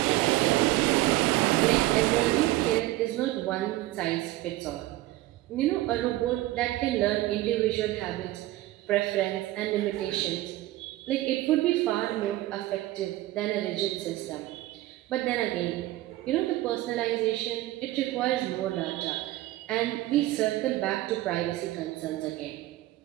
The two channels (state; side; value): quieter; left; 16.8 dB